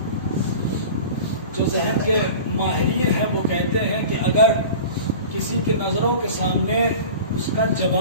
جو ذہن کے ماہرین ہیں وہ کہتے ہیں کہ اگر کسی کے نظروں کے سامنے اس کا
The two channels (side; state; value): both; inverted; correlation -0.37